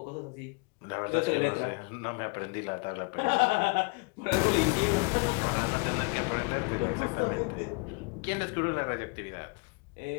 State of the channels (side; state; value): right; quieter; 31.1 dB